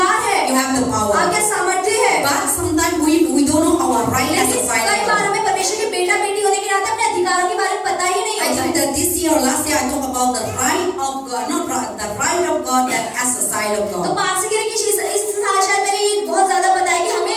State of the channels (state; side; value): identical; both; correlation 1.00